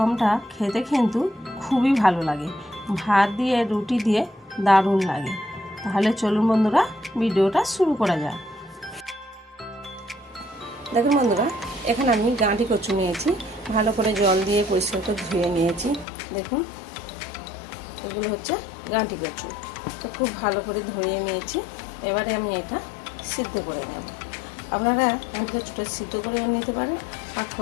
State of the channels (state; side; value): drops out; right; at 16.1 s